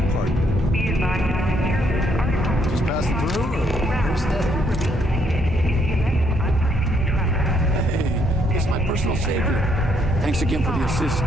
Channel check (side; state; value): both; normal; correlation 0.71